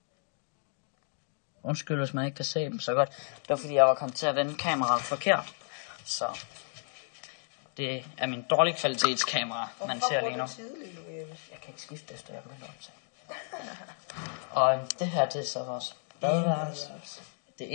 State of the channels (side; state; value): right; silent; 56 dB below the other